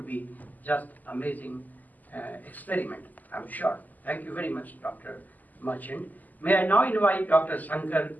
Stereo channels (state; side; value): late; right; 0.082 ms